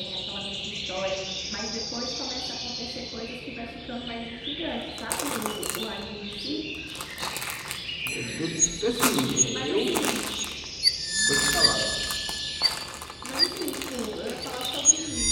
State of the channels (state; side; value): identical; both; correlation 1.00